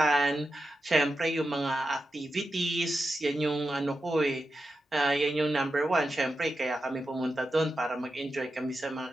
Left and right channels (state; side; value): normal; both; correlation 0.89